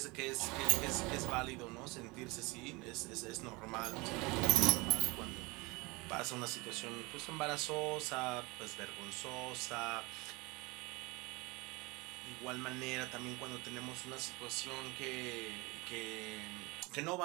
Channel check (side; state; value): left; quieter; 25.0 dB